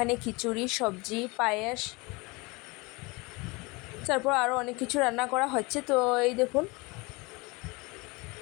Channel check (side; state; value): right; quieter; 25.6 dB